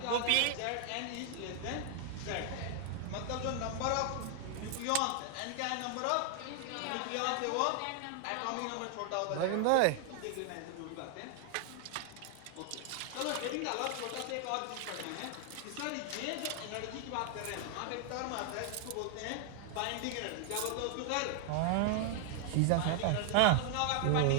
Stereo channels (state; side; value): different; both; correlation 0.00